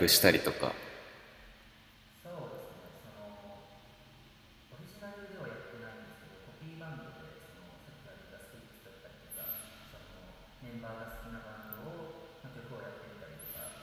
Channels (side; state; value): both; identical; correlation 1.00